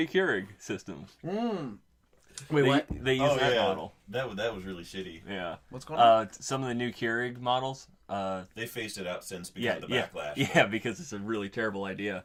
Keurig systems. Wait, what? They use that model. That was really shitty. Yeah. What's going on? Some of the new Keurig models. They phased it out since because of the backlash. Yeah, because it's a really terrible idea.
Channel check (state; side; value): identical; both; correlation 1.00